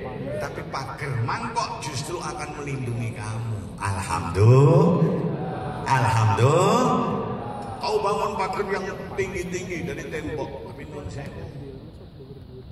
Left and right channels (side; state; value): both; identical; correlation 1.00